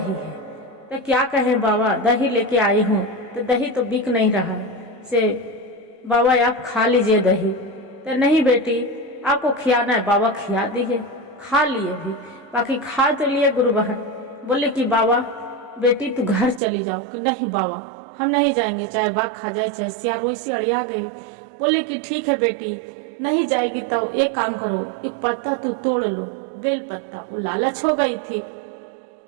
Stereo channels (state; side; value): drops out; left; at 16.6 s